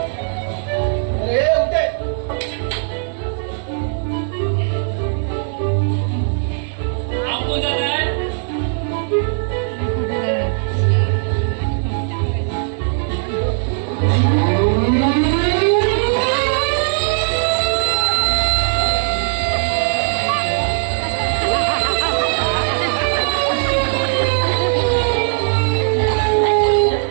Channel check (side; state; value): left; silent; digital silence